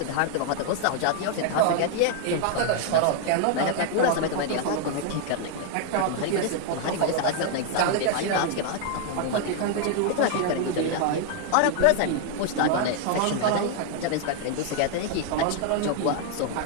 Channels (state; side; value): different; both; correlation 0.00